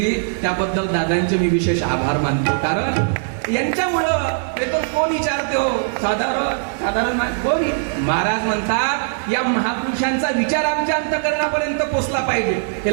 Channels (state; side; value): silent; left; 66 dB below the other